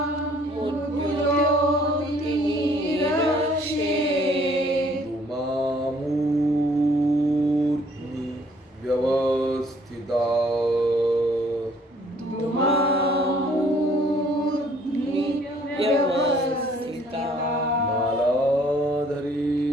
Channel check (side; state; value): both; normal; correlation 0.60